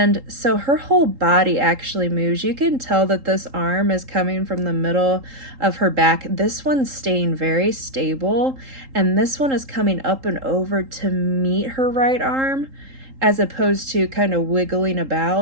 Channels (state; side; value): late; left; 3.8 ms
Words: so her whole body actually moves. You can tell that this arm is coming from the middle of her back. This one's staying very stable, and this one is coming up and over to meet her right arm, as opposed to kind of wiggling